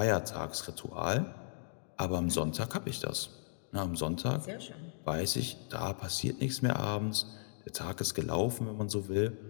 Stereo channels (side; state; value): right; silent; digital silence